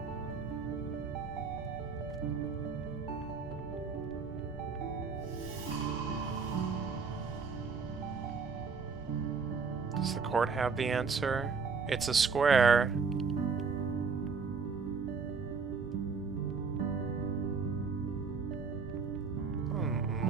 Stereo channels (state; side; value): quieter; left; 5.1 dB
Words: Does the court have the answer? It's a square.